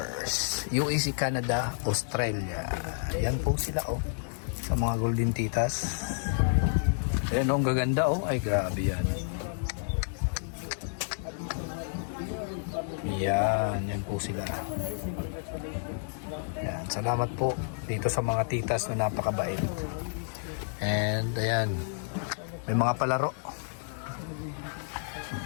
UAC Canada, Australia. Yan po sila oh. Sa mga Golden Titas. Ayan oh, ang gaganda oh. Ay, grabe yan. Yan po sila. Yan, salamat po dito sa mga titas na napakabait. And ayan, may mga palaro.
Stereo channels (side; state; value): right; silent; digital silence